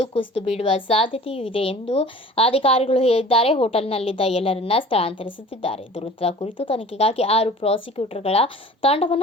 ಕುಸಿದು ಬೀಳುವ ಸಾಧ್ಯತೆಯೂ ಇದೆ ಎಂದು ಅಧಿಕಾರಿಗಳು ಹೇಳಿದ್ದಾರೆ. ಹೋಟೆಲ್ನಲ್ಲಿದ್ದ ಎಲ್ಲರನ್ನ ಸ್ಥಳಾಂತರಿಸುತ್ತಿದ್ದಾರೆ. ದುರಂತದ ಕುರಿತು ತನಿಖೆಗಾಗಿ 6 ಪ್ರಾಸಿಕ್ಯೂಟರ್ಗಳ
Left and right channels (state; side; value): normal; both; correlation 0.44